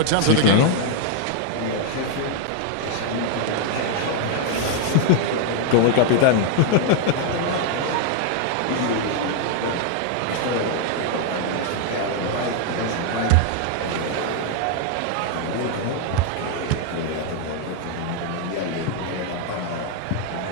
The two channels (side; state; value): both; different; correlation 0.00